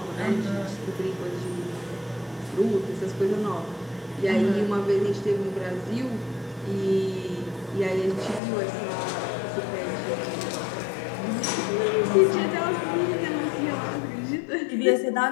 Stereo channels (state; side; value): drops out; right; at 8.4 s